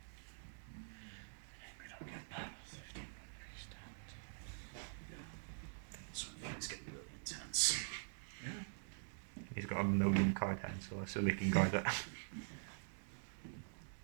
get that. 15 increased damage. So it's getting really intense. He's got a million card hands, so I assume he can guard it.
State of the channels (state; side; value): silent; left; digital silence